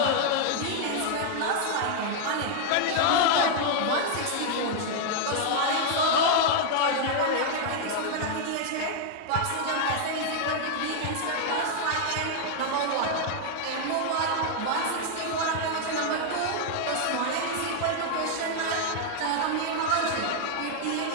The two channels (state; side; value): different; both; correlation 0.00